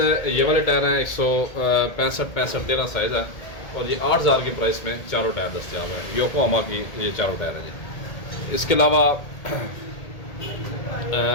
ये वाले टायर हैं 165-65-13 साइज़ है और ये 8,000 की प्राइस में चारों टायर दस्तियाब है। योकोहामा की ये चारों टायर हैं जी। इसके अलावा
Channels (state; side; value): late; right; 1.8 ms